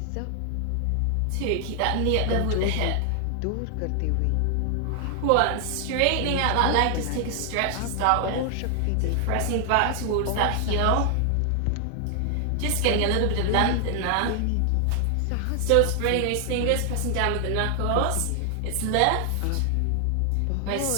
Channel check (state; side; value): different; both; correlation 0.00